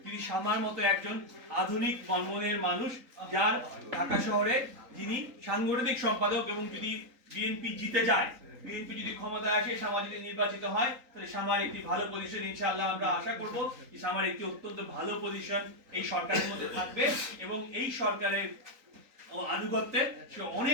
যদি শামার মতো একজন আধুনিক মনমনের মানুষ, যার ঢাকা শহরে যিনি সাংগঠনিক সম্পাদক, এবং যদি বিএনপি জিতে যায়, বিএনপি যদি ক্ষমতায় আসে, শামা যদি নির্বাচিত হয়, তাহলে শামার একটি ভালো পজিশন ইনশাআল্লাহ আমরা আশা করব যে শামার একটি অত্যন্ত ভালো পজিশন এই সরকারের মধ্যে থাকবে এবং এই সরকারের আনুগত্যে সে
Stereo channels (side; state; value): left; late; 3.8 ms